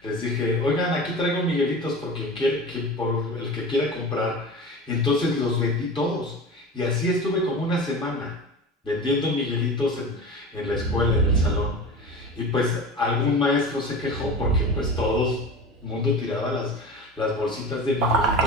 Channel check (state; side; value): normal; both; correlation 0.32